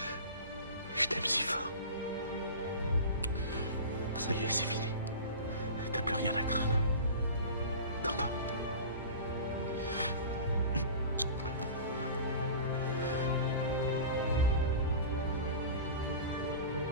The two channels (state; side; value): inverted; both; correlation -0.35